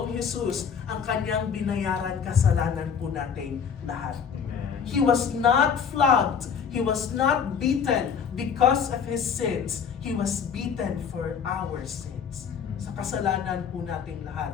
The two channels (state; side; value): quieter; right; 7.0 dB